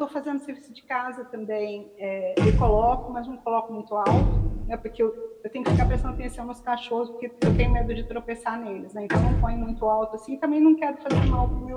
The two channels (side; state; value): both; identical; correlation 1.00